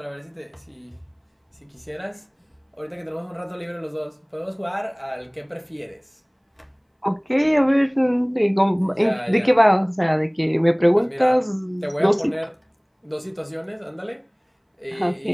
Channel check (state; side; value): identical; both; correlation 1.00